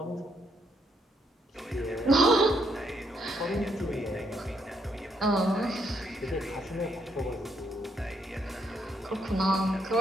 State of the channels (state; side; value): normal; both; correlation 0.75